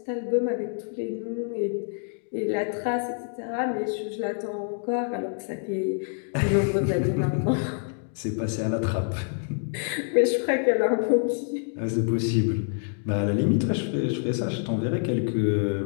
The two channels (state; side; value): silent; right; 60 dB below the other